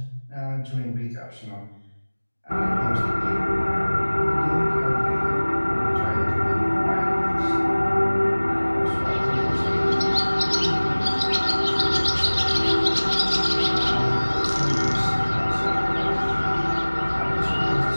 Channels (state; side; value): inverted; both; correlation -1.00